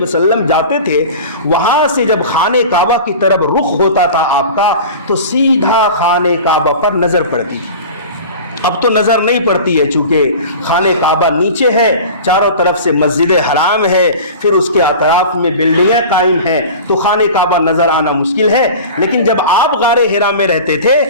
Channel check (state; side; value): inverted; both; correlation -0.36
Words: وسلم جاتے تھے، وہاں سے جب خانہ کعبہ کی طرف رخ ہوتا تھا آپ کا، تو سیدھا خانہ کعبہ پر نظر پڑتی۔ اب تو نظر نہیں پڑتی ہے، چونکہ خانہ کعبہ نیچے ہے، چاروں طرف سے مسجد حرام ہے، پھر اس کے اطراف میں بلڈنگیں قائم ہیں، تو خانہ کعبہ نظر آنا مشکل ہے۔ لیکن جب آپ غار حرا میں رہتے تھے